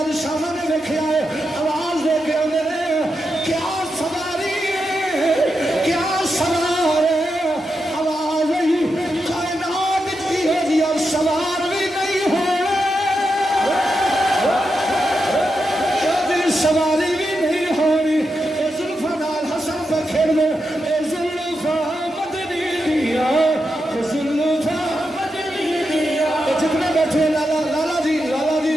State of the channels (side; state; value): both; normal; correlation 0.87